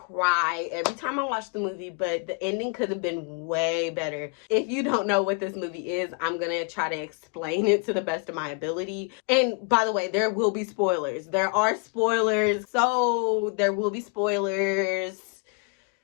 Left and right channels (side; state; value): right; quieter; 34.6 dB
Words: every time I watch the movie, but the ending could have been way better. If you don't know what this movie is, I'm going to try to explain it to the best of my ability. And by the way, there will be spoilers. There are spoilers. So there will be spoilers.